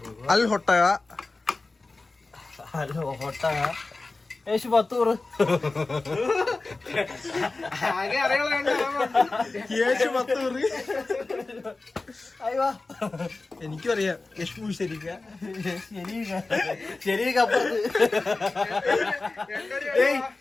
അൽ ഹൊട്ടക. ഹലോ ഒട്ടക ഏശു 10 എനിക്കും അറിയാം. യശ്മു ശരിക്ക ശരിക്കപ്പുറത്ത്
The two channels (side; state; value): right; quieter; 3.5 dB